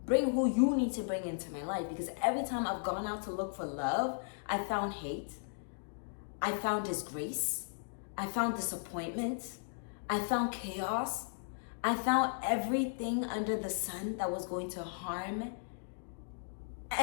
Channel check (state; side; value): silent; right; digital silence